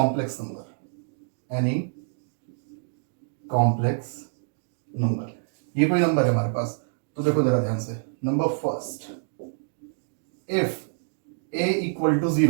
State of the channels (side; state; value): left; silent; digital silence